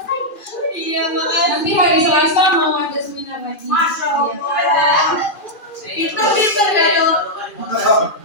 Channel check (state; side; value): late; right; 2.4 ms